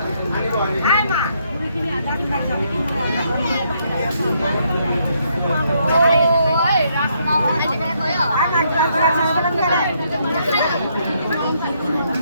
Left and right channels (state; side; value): inverted; both; correlation -0.73